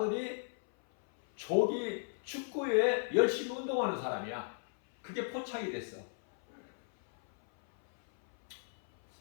조기 축구에 열심히 운동하는 사람이야. 그게 포착이 됐어.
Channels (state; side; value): silent; right; 54 dB below the other